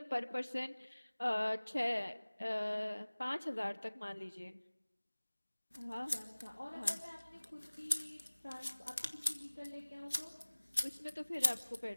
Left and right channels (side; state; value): both; inverted; correlation -1.00